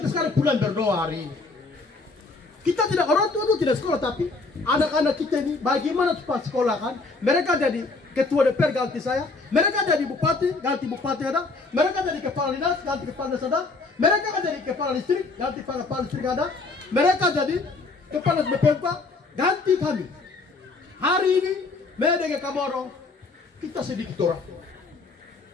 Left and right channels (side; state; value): right; quieter; 3.7 dB